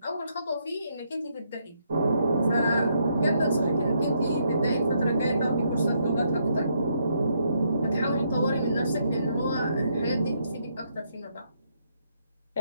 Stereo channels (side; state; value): both; inverted; correlation -0.74